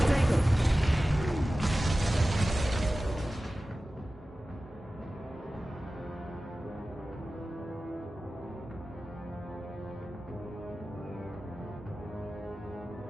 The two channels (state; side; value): normal; both; correlation 0.95